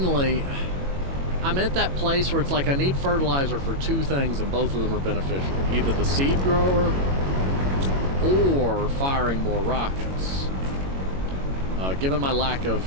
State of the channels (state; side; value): late; left; 22 ms